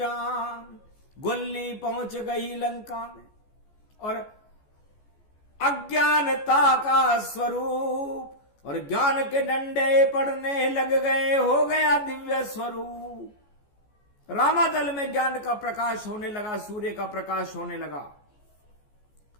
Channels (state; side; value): late; right; 14 ms